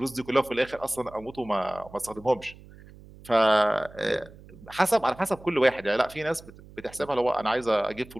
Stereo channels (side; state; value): right; noise; hum, 21 dB below the sound